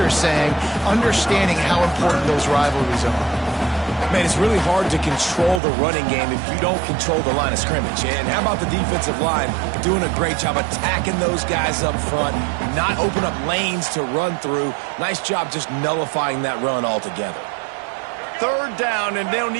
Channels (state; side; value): drops out; left; at 5.6 s